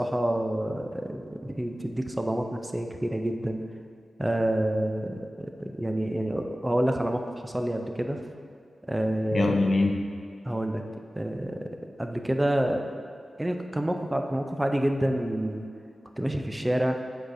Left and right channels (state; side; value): normal; both; correlation 0.96